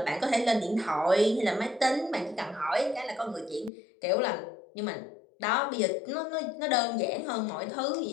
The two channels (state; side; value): drops out; right; at 3.7 s